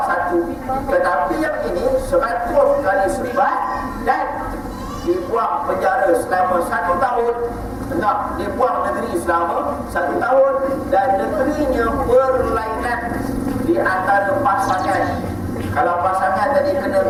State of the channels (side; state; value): both; identical; correlation 1.00